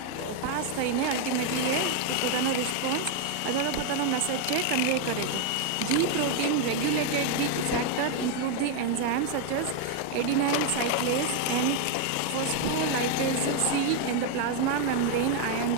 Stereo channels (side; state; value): both; different; correlation 0.01